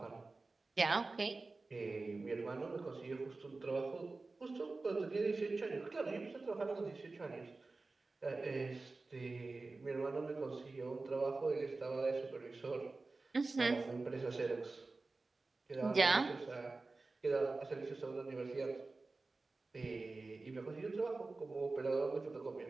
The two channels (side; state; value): left; quieter; 3.5 dB